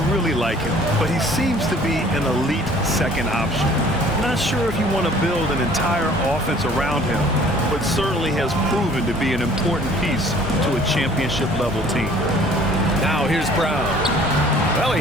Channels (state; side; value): normal; both; correlation 0.53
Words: really like him, but he seems to be an elite second option. Not sure if you want to build an entire offense around him, but certainly has proven to be an important piece to a championship-level team. Now here's Brown. Well, he